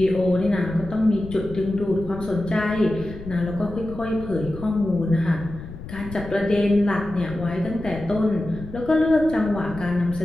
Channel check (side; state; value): left; noise; rumble, 13 dB below the sound